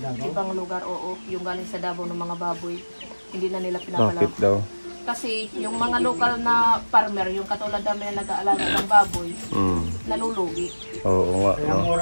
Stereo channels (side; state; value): both; inverted; correlation -1.00